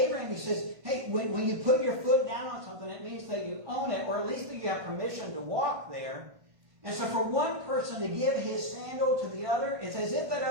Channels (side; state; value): left; late; 1.5 ms